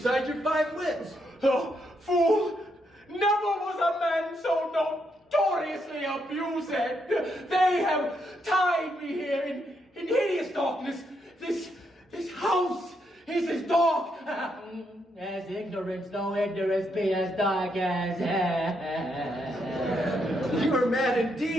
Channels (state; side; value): normal; both; correlation 0.78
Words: your 5 wits? Oh, fool. Never was a man so notoriously abused. They have tied me here in hideous darkness. This house is as dark as ignorance, though ignorance be as dark as You are mad